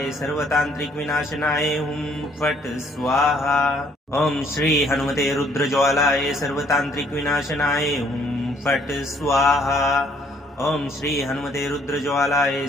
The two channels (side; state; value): both; normal; correlation 0.64